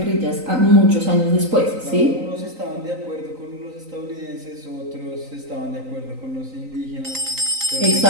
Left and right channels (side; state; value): left; late; 3.9 ms